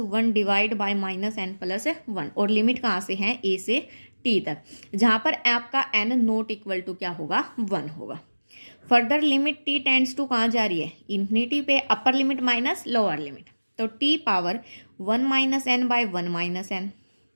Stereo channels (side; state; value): both; inverted; correlation -1.00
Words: divide by -n+1, और लिमिट कहाँ से है ए से टी तक, जहाँ पर आपका n नॉट इक्वल टू क्या होगा 1 होगा. Further limit T tends to कहाँ जा रही है इन्फिनिटी पे, upper limit minus lower limit, तो T power 1 - n by 1 - n